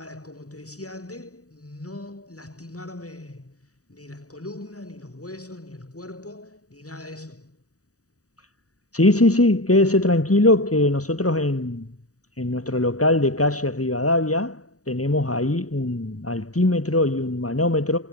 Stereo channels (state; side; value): late; right; 0.66 ms